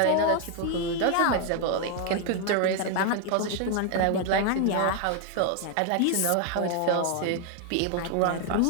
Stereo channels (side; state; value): both; different; correlation 0.00